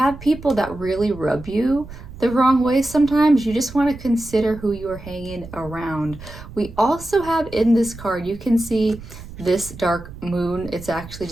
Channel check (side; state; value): right; noise; rumble, 15 dB below the sound